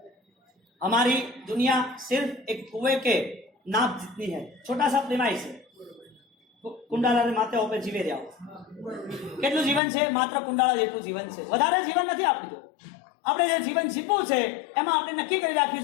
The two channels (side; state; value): right; drops out; at 9.8 s